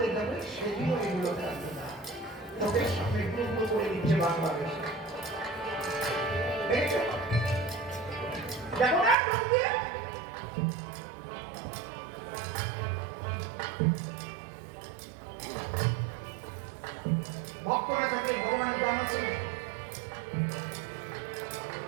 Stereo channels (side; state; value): left; drops out; at 9.2 s